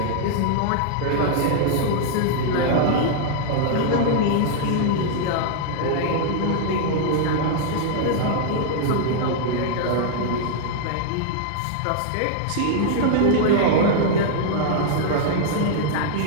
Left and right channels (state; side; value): different; both; correlation -0.01